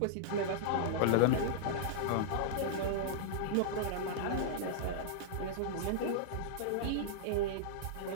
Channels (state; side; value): different; both; correlation -0.02